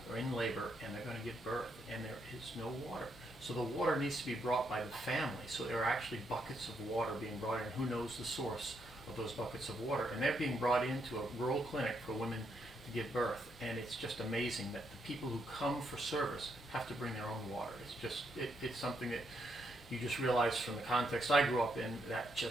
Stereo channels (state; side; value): normal; both; correlation 0.78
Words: in labor and they're going to give birth, and there is no water. So the water needs to be brought by the family. So there are actually buckets of water being brought in. Who knows the source of those buckets of water? And they're being brought into a rural clinic for women to give birth. And it's just amazing that the people who come for service have to bring their own water. It's something that you just realize from the context I grew up in, that